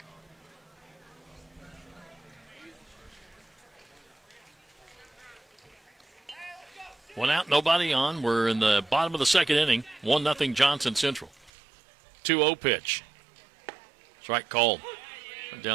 One out, nobody on. We're in the bottom of the second inning. 1-0 Johnson Central. 2-0 pitch. Strike called.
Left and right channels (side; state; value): left; drops out; at 11.5 s